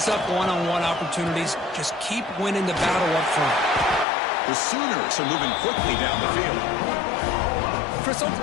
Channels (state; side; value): drops out; right; at 4.0 s